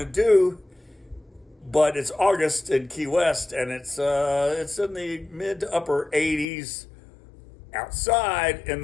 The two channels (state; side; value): drops out; right; at 6.5 s